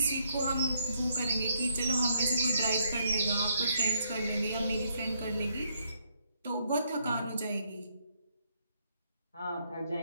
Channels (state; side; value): inverted; both; correlation -0.73